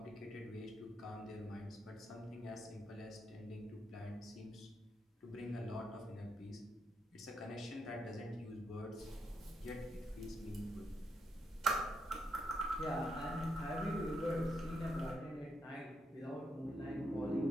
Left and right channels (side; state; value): both; normal; correlation 0.79